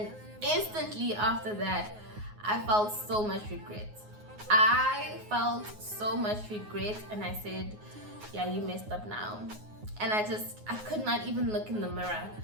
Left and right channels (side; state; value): left; late; 9.5 ms